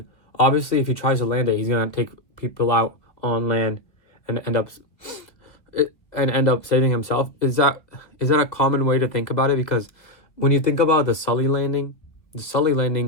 obviously, if he tries to land it, he's gonna take people out on land and end up saving himself. Is that a common way to think about it? Because when you think about the Sully landing,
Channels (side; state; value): right; late; 1.8 ms